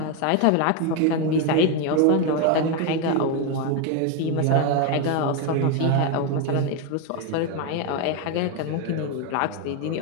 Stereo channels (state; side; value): different; both; correlation 0.02